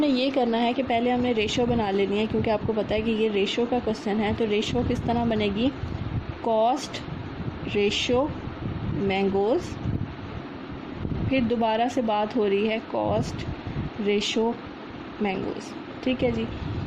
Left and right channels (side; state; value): both; identical; correlation 1.00